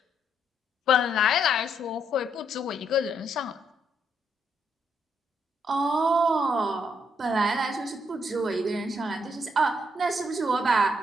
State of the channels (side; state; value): both; normal; correlation 0.74